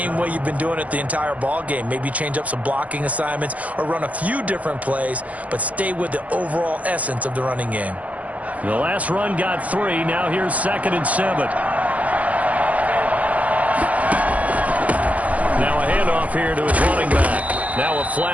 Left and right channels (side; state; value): left; late; 0.069 ms